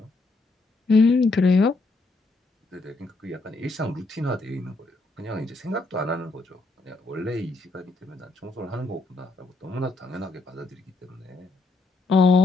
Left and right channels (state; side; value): quieter; right; 3.3 dB